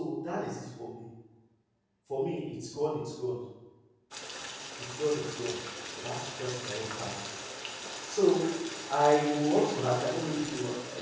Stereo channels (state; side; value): identical; both; correlation 1.00